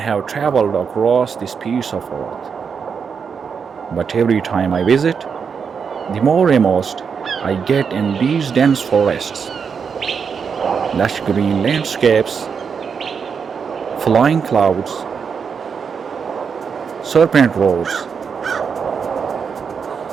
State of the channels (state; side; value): quieter; left; 6.3 dB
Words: traveled across this piece of earth, but every time I visit, the more immersed I get in these dense forests, lush green landscapes, flying clouds, serpent roars,